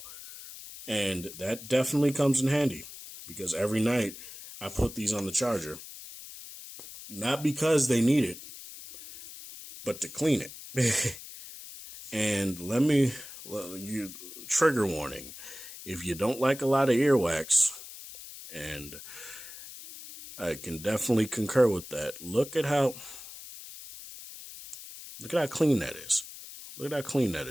And that definitely comes in handy because every night I put these on the charger, not because they need it, but to clean it. And trigger warning, if you don't like a lot of earwax, and I can definitely concur with that, look at how clean that is. Look at how clean that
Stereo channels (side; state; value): left; noise; hiss, 14 dB below the sound